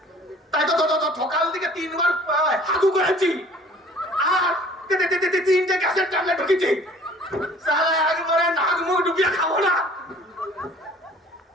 তাই তো সকাল থেকে 3 বার হাগু করেছি আর 3টে গ্যাসের ট্যাবলেট ঢুকেছি। সারা একবারে নাক মুখ ডুবিয়ে খাবো না।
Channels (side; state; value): both; normal; correlation 0.51